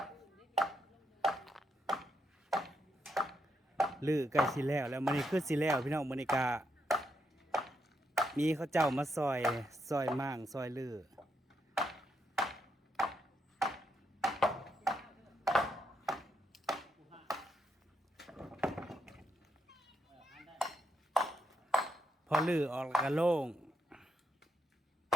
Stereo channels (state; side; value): normal; both; correlation 0.79